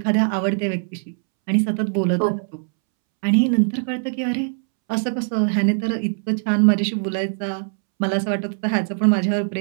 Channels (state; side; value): silent; left; 65 dB below the other